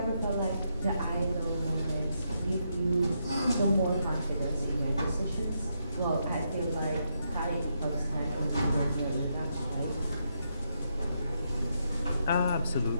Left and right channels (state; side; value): inverted; both; correlation -0.80